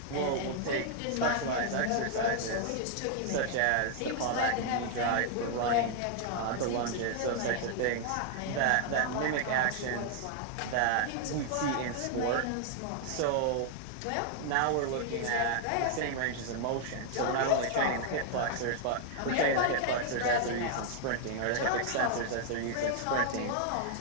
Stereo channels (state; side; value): different; both; correlation 0.00